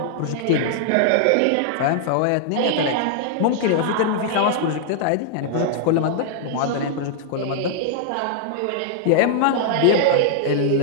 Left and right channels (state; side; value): different; both; correlation -0.01